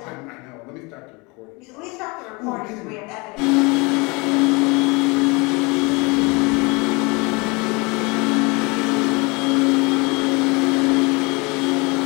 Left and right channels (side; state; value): right; quieter; 27.2 dB